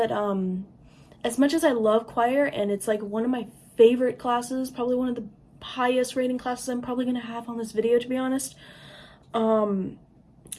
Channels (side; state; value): both; identical; correlation 1.00